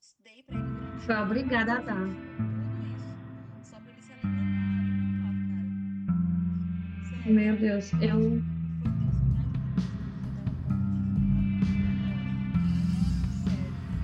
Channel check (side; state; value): both; identical; correlation 1.00